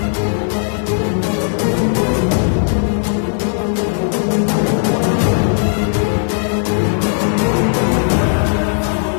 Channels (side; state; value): right; silent; digital silence